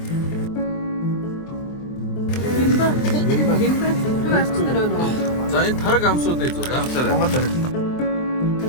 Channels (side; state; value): right; late; 23 ms